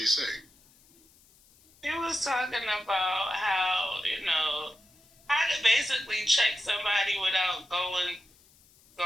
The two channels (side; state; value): left; noise; hiss, 29 dB below the sound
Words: He was talking about how to basically check somebody without going